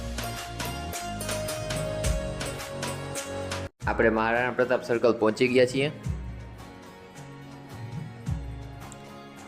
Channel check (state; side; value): identical; both; correlation 1.00